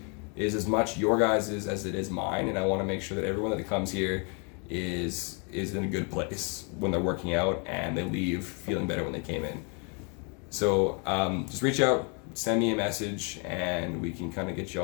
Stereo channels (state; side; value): quieter; right; 35.9 dB